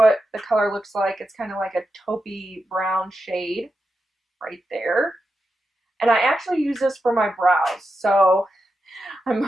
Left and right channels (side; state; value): both; normal; correlation 0.88